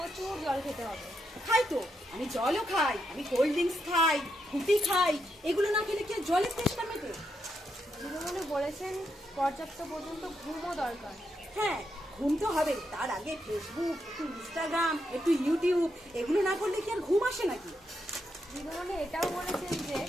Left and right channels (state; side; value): normal; both; correlation 0.81